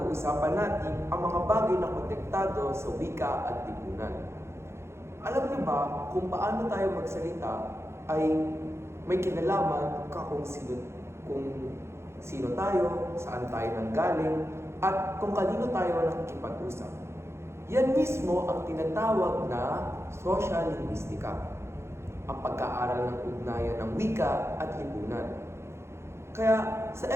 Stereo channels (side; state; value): left; late; 0.13 ms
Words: natin ang mga bagay na konektado sa wika at lipunan. Alam niyo ba kung paano tayo magsalita ay may kinalaman kung sino tayo, saan tayo nanggaling, at kung kanino tayo nakikipag-usap. Yan mismo ang tinatawag na social linguistica, ang pagkaaral ng ugnayan ng wika at lipunan. Kaya sa